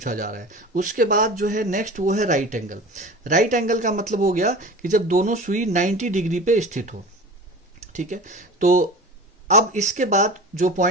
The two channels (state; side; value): normal; both; correlation 0.36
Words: जा रहा है। उसके बाद जो है नेक्स्ट वो है राइट एंगल। राइट एंगल का मतलब हो गया कि जब दोनों सुई 90 डिग्री पे स्थित हो। ठीक है, तो अब इसके बाद जो